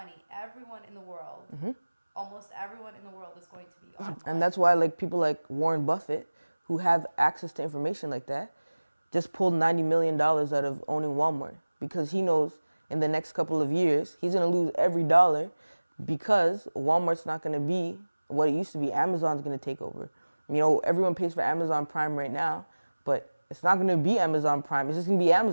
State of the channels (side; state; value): both; inverted; correlation -1.00